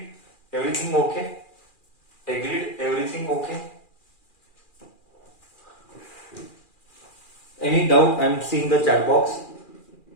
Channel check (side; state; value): right; late; 2.4 ms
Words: Everything okay? Any doubt? I'm seeing the chat box.